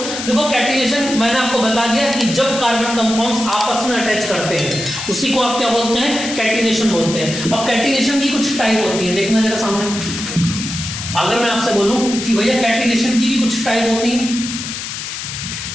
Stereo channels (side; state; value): left; noise; hiss, 7 dB below the sound